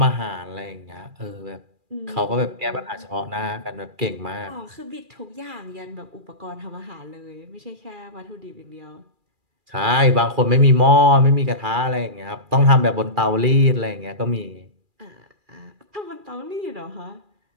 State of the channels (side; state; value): left; late; 2.4 ms